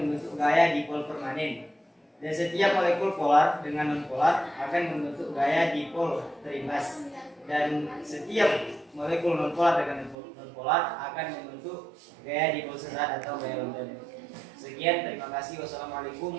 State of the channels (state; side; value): drops out; left; at 10.2 s